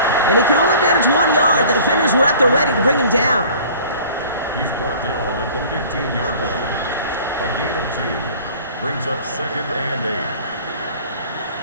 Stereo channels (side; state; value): both; inverted; correlation -0.47